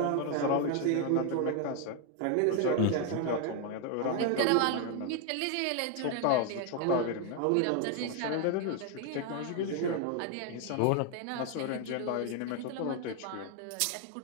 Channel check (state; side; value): different; both; correlation 0.01